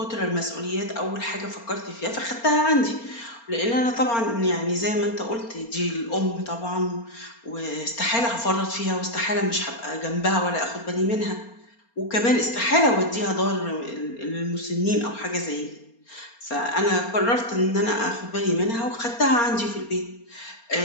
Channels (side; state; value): right; late; 4.3 ms